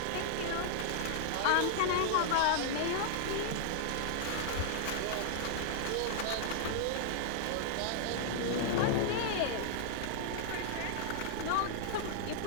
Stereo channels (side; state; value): both; different; correlation -0.01